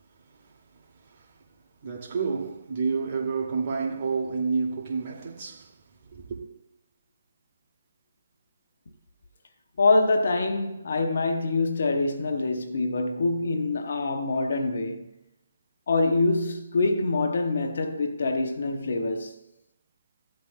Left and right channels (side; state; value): both; inverted; correlation -0.83